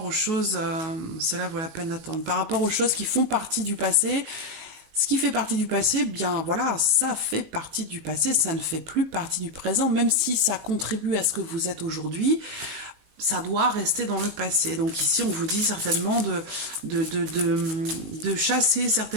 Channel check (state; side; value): late; left; 19 ms